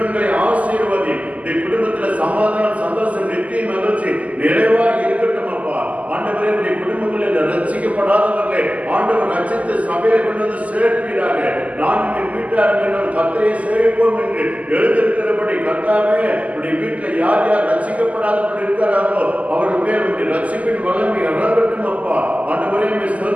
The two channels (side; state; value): left; late; 0.072 ms